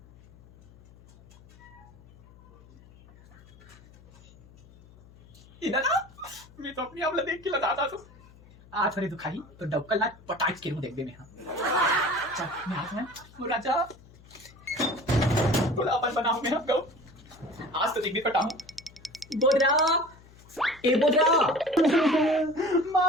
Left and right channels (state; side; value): noise; left; hum, 24 dB below the sound